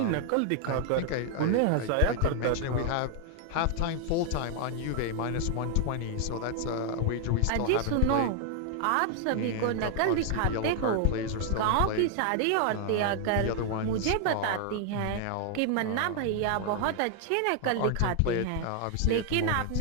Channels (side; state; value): both; different; correlation 0.00